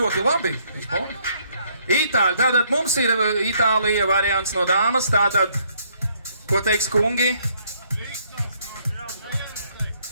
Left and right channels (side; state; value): both; inverted; correlation -0.67